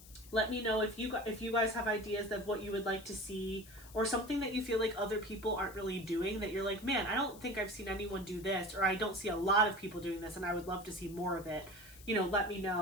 let me know if you guys have ideas of what you would like to see, or something that you feel like other people aren't really doing, that you're like, man, I don't think I've seen anyone do this, or I don't see a lot of people doing this, and I would love to see more of it. You know, let me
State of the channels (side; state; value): left; noise; hiss, 20 dB below the sound